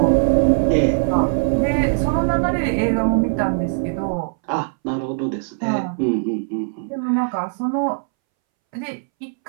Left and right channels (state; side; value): silent; left; 64 dB below the other